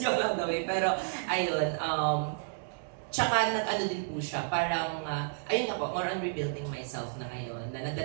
yung lang daw eh. Pero ayun, tsaka nag-ano din po siya, parang, ayun nga po, more on rebuilding myself na ngayon. Na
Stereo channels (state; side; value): silent; left; digital silence